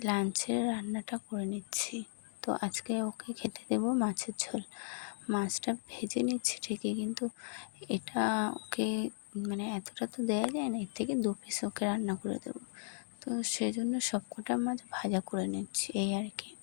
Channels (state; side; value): silent; right; digital silence